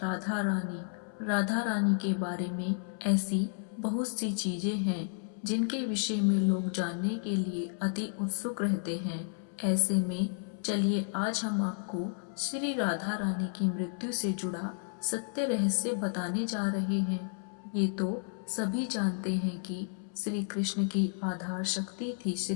रानी। राधा रानी के बारे में ऐसी बहुत सी चीजें हैं जिनके विषय में लोग जानने के लिए अति उत्सुक रहते हैं। ऐसे में चलिए आज हम आपको श्री राधा रानी की मृत्यु से जुड़ा सत्य रहस्य बताने जा रहे हैं। ये तो सभी जानते हैं कि श्री कृष्ण की आधार शक्ति थी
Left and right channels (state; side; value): silent; right; 56 dB below the other